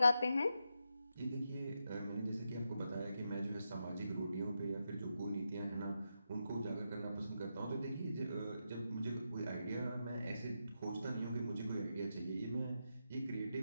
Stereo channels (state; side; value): inverted; both; correlation -0.85